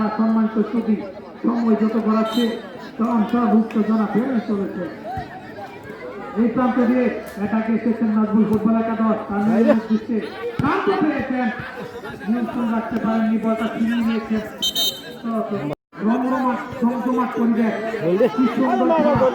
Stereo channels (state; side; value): identical; both; correlation 1.00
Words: সম্মানিত ছবি সময় যত করাচ্ছে উত্তেজনা বেড়ে চলেছে। এই প্রান্ত দিয়ে এটাকে এসেছেন নাজমুল ফুটবল একাদশ, তার দৃষ্টি শান্ত পেয়েছেন, নিয়ন্ত্রণ রাখতে পারেননি, বলটা ছিনিয়ে নিয়েছেন। রমরমাট জমজমাট পরিবেশ, কি সুন্দর